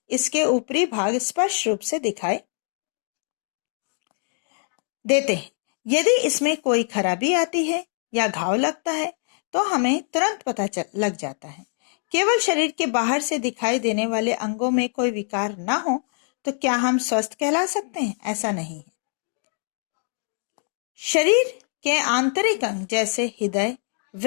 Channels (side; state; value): right; silent; 58 dB below the other